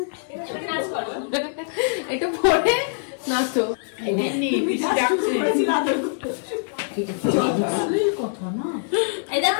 এবার নাচ করো। একটু পরে নাচো। কথা না এই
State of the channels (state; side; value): silent; right; digital silence